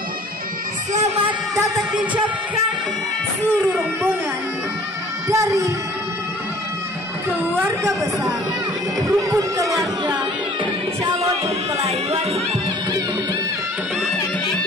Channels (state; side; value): normal; both; correlation 0.51